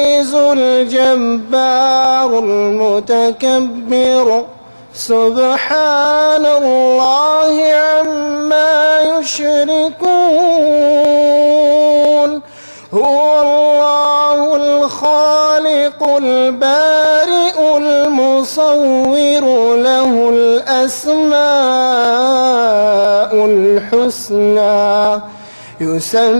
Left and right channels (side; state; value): both; inverted; correlation -1.00